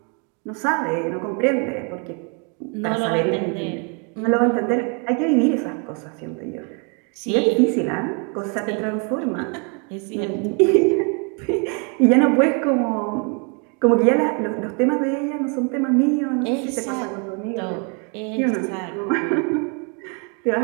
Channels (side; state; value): left; quieter; 36.4 dB